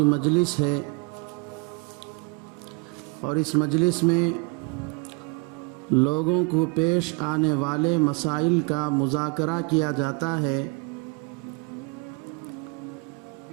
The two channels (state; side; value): quieter; left; 30.3 dB